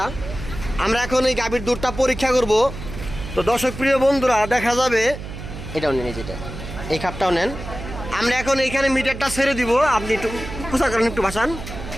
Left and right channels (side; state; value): right; noise; hum, 10 dB below the sound